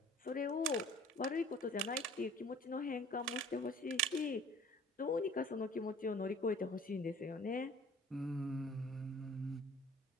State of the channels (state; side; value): normal; both; correlation 0.49